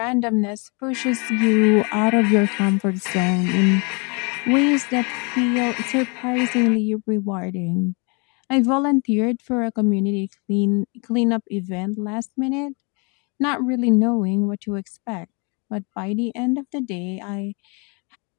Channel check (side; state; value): right; quieter; 32.7 dB